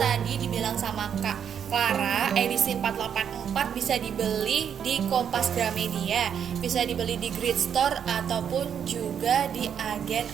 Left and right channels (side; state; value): left; quieter; 8.2 dB